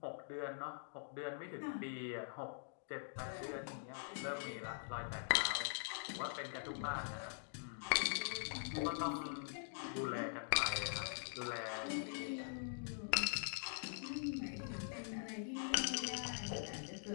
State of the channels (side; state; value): right; silent; digital silence